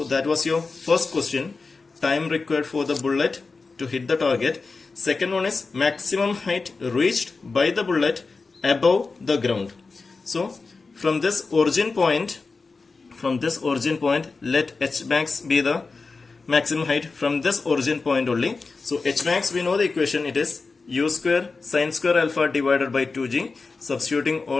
that was your first question. Time required for the bullet to hit the target. Second one is maximum height reached by the bullet above the ground. So from this origin point, let h max be the maximum height from this origin point only. So h max, we know the equation, it is u square sin square alpha divided by 2g. Substituting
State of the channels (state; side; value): quieter; right; 4.2 dB